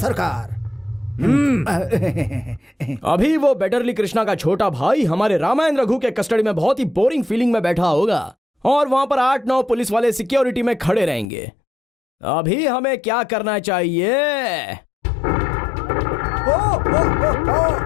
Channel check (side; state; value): right; drops out; at 11.2 s